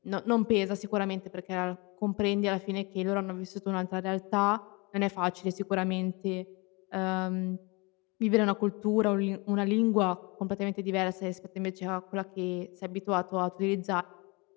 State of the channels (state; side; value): quieter; right; 27.8 dB